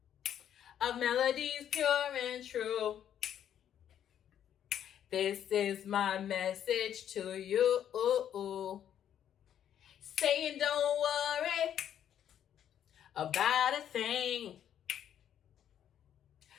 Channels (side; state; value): right; quieter; 9.9 dB